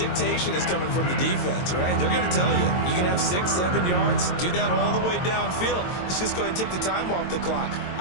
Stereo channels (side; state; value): right; late; 22 ms